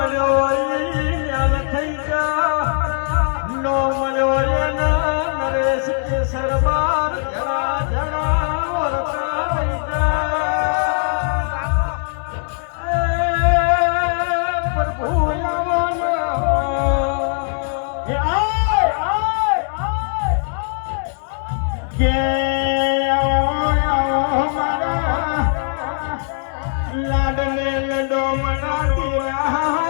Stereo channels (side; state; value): right; silent; 66 dB below the other